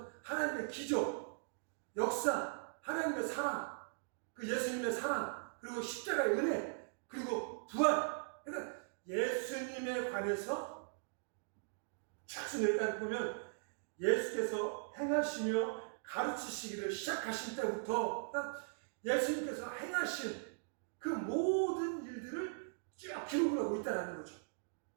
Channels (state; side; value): silent; left; digital silence